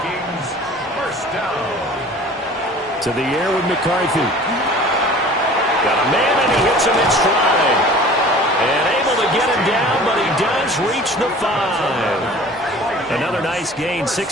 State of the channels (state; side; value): normal; both; correlation 0.45